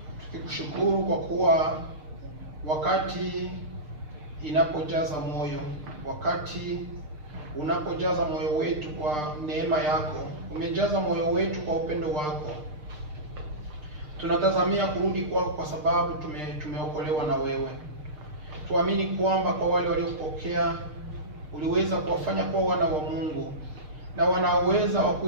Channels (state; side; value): late; left; 6.6 ms